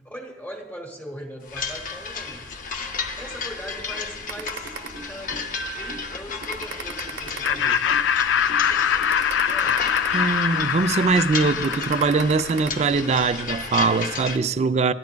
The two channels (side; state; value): both; normal; correlation 0.30